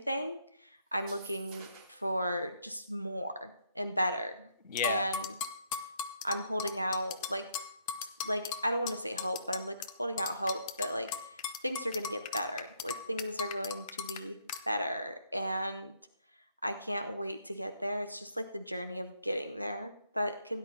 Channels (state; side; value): inverted; both; correlation -0.72